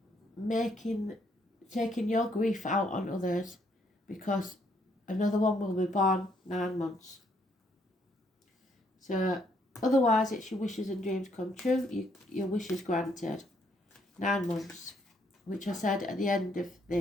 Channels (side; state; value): both; normal; correlation 0.70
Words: taking your grief out on others, because another one will be born 9 months. So otherwise it's your wishes and dreams come true, your wishes granted. 9 months, which I said at the end of